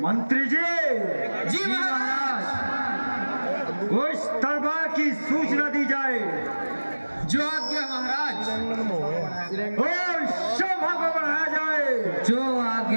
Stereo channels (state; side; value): inverted; both; correlation -1.00